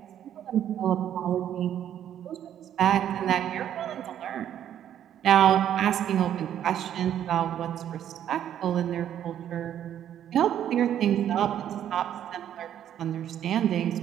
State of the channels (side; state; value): left; quieter; 10.4 dB